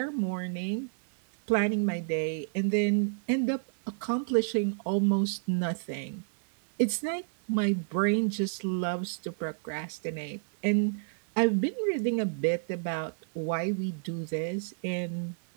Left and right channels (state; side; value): silent; left; 56 dB below the other